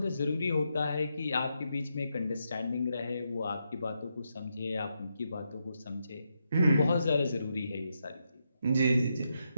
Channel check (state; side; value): inverted; both; correlation -0.83